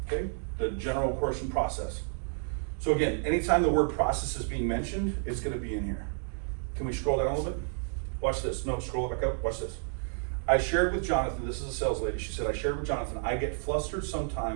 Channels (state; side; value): silent; left; 57 dB below the other